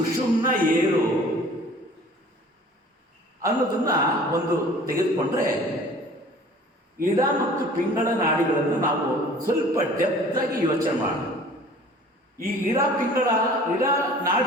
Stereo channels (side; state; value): both; normal; correlation 0.48